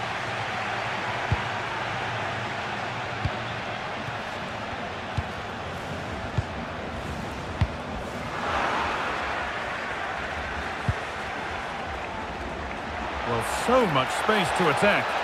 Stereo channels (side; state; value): both; identical; correlation 1.00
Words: Well, so much space to attack.